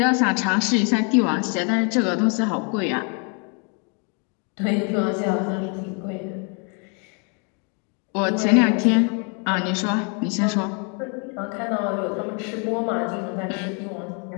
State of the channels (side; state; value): right; quieter; 36.7 dB